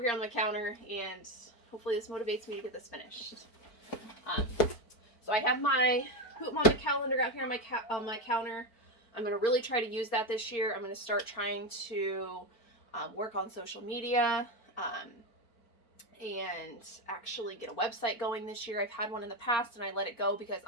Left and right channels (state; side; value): late; right; 4.5 ms